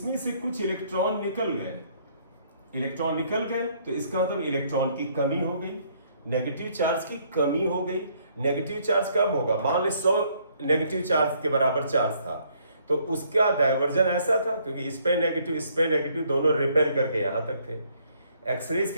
से कुछ इलेक्ट्रॉन निकल गए, तो इसका मतलब इलेक्ट्रॉन की कमी हो गई, नेगेटिव चार्ज की कमी हो गई। नेगेटिव चार्ज कब होगा, मान ले 100 नेगेटिव चार्ज के बराबर चार्ज था तो उसका डाइवर्जन ऐसा था, क्योंकि इस पे नेगेटिव दोनों रिपेयर करके यहां तक थे। एक्सरेज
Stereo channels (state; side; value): inverted; both; correlation -0.66